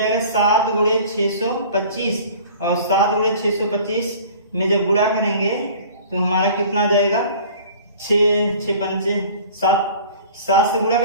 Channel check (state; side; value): inverted; both; correlation -0.45